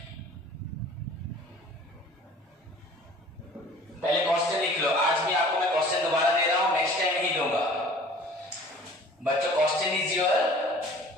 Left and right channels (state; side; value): normal; both; correlation 0.47